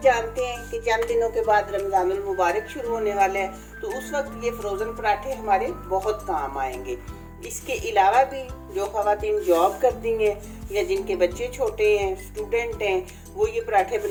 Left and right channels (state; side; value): identical; both; correlation 1.00